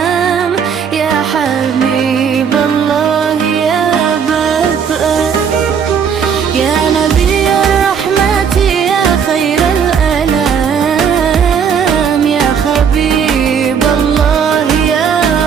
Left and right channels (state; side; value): quieter; left; 7.0 dB